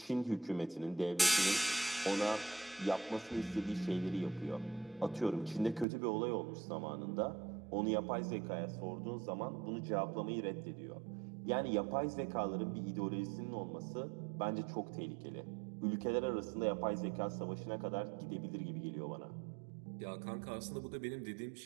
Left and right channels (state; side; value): drops out; left; at 5.9 s